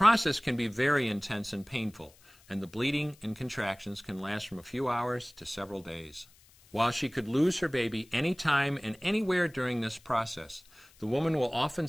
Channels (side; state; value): left; noise; hiss, 27 dB below the sound